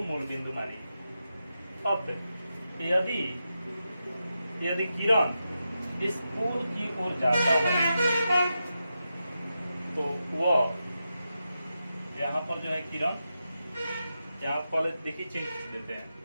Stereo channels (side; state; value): both; inverted; correlation -0.88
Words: बिंदु मानिए। अब यदि किरण इस पोल की ओर जाता है तो वह यहाँ पर किरण, यहाँ पहले देखिए चिन्ह खींच देते हैं,